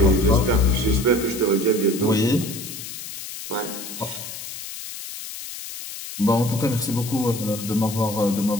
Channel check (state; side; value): noise; left; hiss, 10 dB below the sound